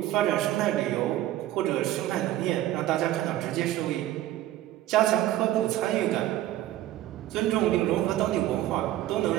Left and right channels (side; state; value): left; quieter; 14.1 dB